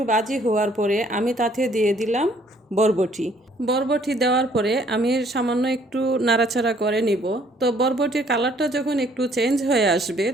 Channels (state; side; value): normal; both; correlation 0.62